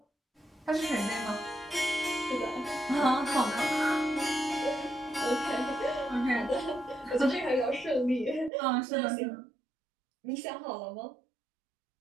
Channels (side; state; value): left; drops out; at 8.5 s